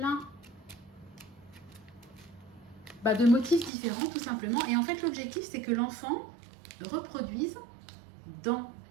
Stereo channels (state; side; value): drops out; left; at 3.7 s